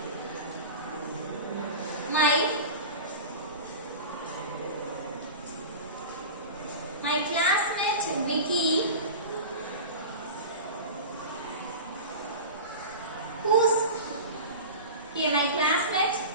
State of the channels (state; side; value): inverted; both; correlation -0.31